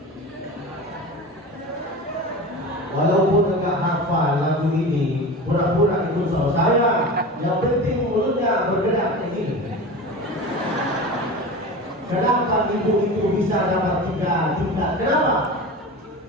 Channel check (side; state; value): both; normal; correlation 0.30